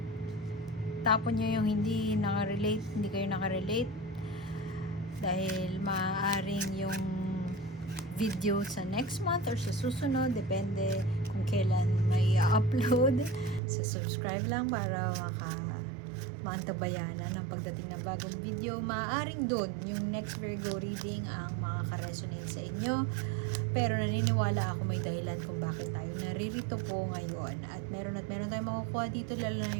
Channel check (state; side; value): drops out; left; at 13.6 s